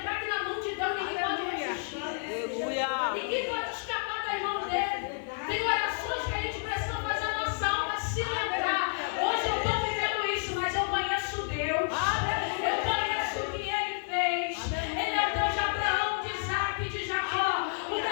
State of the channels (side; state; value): right; silent; digital silence